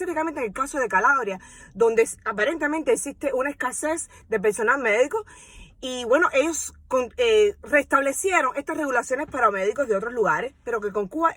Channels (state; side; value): identical; both; correlation 1.00